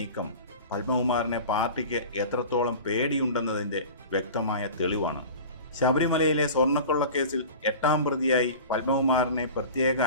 പത്മകുമാറിനെ പാർട്ടിക്ക് എത്രത്തോളം പേടിയുണ്ടെന്നതിൻ്റെ വ്യക്തമായ തെളിവാണ്. ശബരിമലയിലെ സ്വർണ്ണക്കൊള്ളക്കേസിൽ 8ാം പ്രതിയായി പത്മകുമാറിനെ പ്രത്യേക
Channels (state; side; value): inverted; both; correlation -0.36